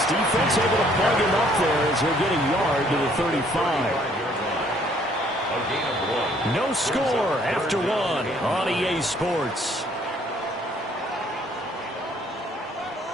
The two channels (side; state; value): both; normal; correlation 0.62